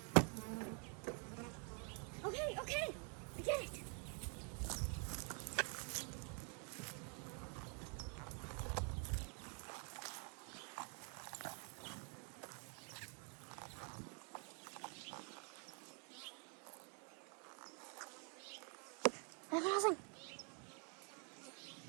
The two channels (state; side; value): quieter; left; 38.2 dB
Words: Okay, okay, I get it. I have nothing.